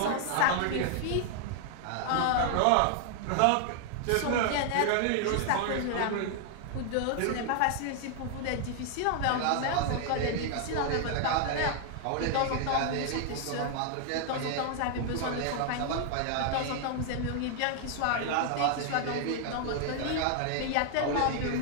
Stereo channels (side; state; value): both; different; correlation 0.00